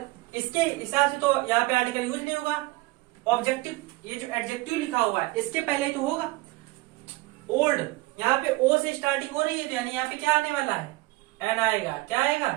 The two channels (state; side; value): quieter; left; 21.0 dB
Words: इसके हिसाब से तो यहाँ पे आर्टिकल यूज नहीं होगा। ऑब्जेक्टिव, ये जो एडजेक्टिव लिखा हुआ है इसके पहले ही तो होगा। ओल्ड यहाँ पे ओ से स्टार्टिंग हो रही है, तो यानी यहाँ पे क्या आने वाला है? एन आएगा। क्या